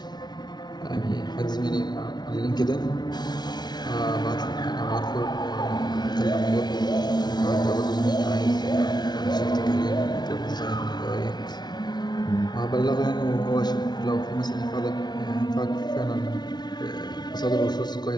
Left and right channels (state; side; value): late; right; 0.20 ms